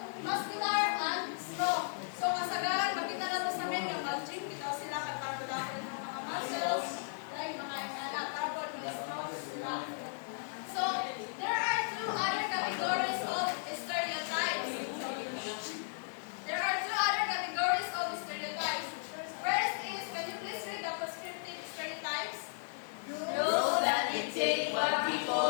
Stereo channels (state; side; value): silent; right; digital silence